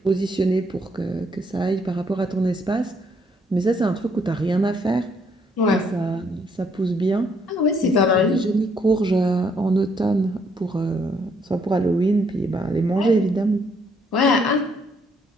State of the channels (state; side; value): normal; both; correlation 0.69